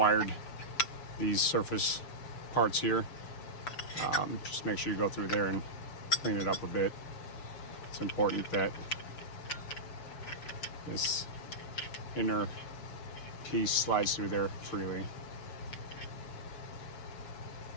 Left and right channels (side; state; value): right; late; 6.9 ms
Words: these surface parts here. Just make sure you go through there and clean it up a bit. It's important that this inner piece slides through there freely.